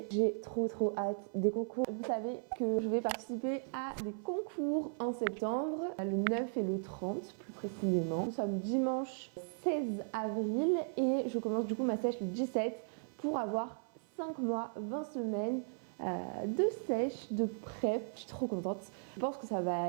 J'ai trop hâte des concours. Vous savez que je vais participer à des concours en septembre, le 9 et le 30 plus précisément. Nous sommes dimanche 16 avril et je commence du coup ma sèche le 17 pour avoir 5 mois, 20 semaines de sèche, de prep. Je suis trop contente. Je pense que ça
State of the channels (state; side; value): silent; left; 53 dB below the other